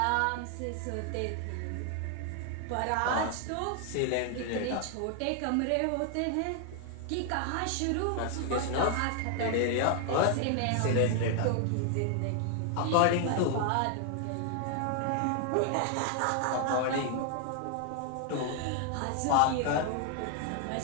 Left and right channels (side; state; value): both; different; correlation 0.00